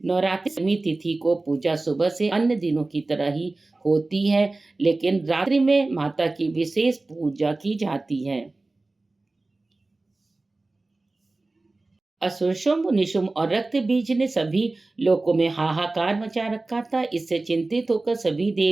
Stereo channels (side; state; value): left; quieter; 3.2 dB